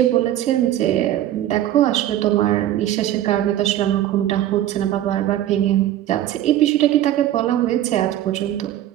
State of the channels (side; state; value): left; quieter; 12.7 dB